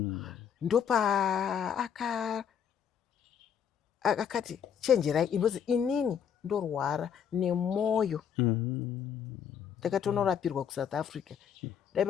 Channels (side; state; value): right; quieter; 8.1 dB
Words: ndopa akati chenjerai inozi inini ndorwara nemwoyo ndakatonorapirwa kuSouth Africa